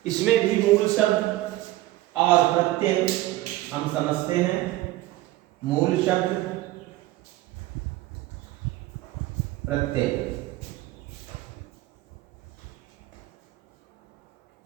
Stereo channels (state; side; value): quieter; left; 17.0 dB